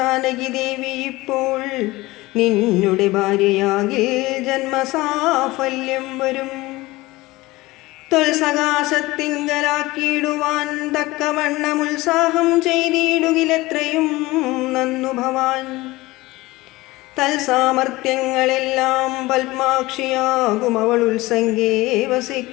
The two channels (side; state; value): right; quieter; 20.0 dB